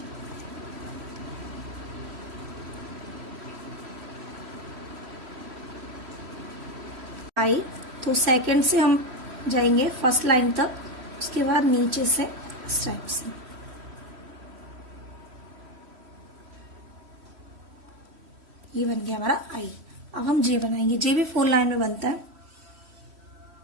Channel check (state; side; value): late; left; 3.1 ms